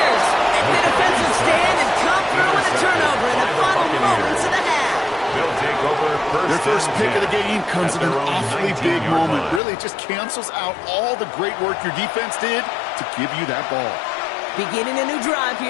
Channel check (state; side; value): drops out; right; at 9.6 s